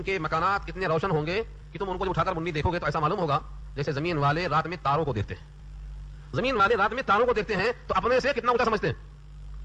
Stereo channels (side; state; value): both; identical; correlation 1.00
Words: کے مکانات اتنے روشن ہوں گے کہ تم ان کو جب اٹھا کر منی دیکھو گے تو ایسا معلوم ہوگا جیسے زمین والے رات میں تاروں کو دیکھتے ہیں. زمین والے رات میں تاروں کو دیکھتے ہیں تو اپنے سے کتنا اونچا سمجھتے ہیں.